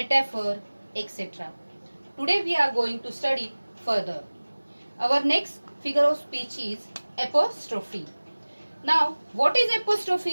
etc. Today we are going to study further. Our next figure of speech is apostrophe. Now, what is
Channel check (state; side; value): inverted; both; correlation -1.00